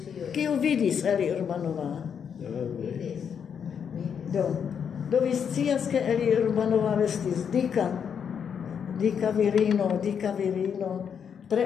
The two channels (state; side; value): quieter; right; 7.4 dB